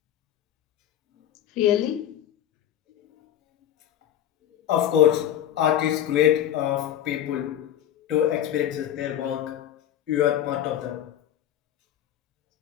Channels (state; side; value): quieter; right; 11.1 dB